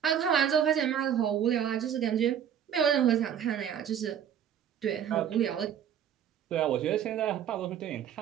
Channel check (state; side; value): quieter; left; 9.3 dB